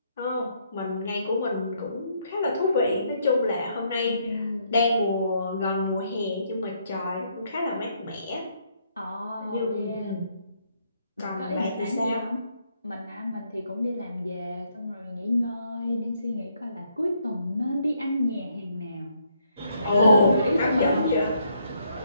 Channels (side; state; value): both; inverted; correlation -0.72